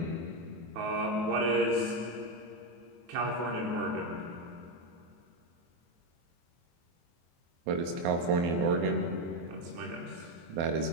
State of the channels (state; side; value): late; left; 24 ms